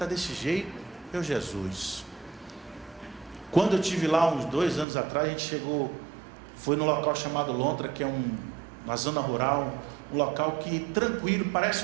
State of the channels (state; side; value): drops out; left; at 4.9 s